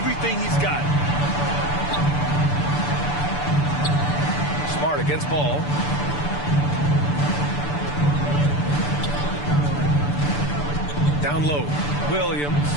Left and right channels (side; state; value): right; late; 6.9 ms